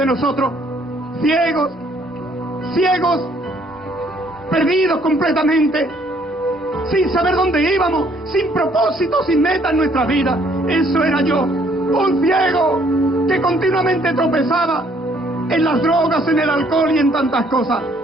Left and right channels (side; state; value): both; normal; correlation 0.64